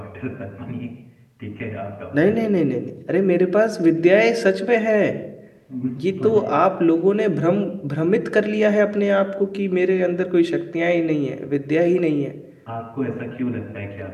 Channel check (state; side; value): identical; both; correlation 1.00